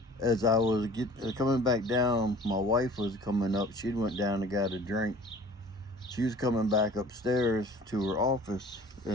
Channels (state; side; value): normal; both; correlation 0.47